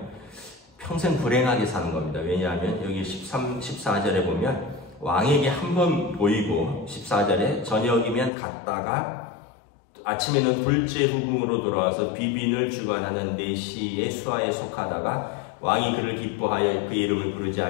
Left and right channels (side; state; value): right; drops out; at 8.3 s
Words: 평생 불행하게 사는 겁니다. 왜냐하면 여기 14절에 보면 왕에게 한 번 보이고 14절에 저녁이면 갔다가 아침에는 둘째 후궁으로 돌아와서 비빈을 주관하는 내시의 수하에 속하다가 왕이 그를 기뻐하여 그 이름을 부르지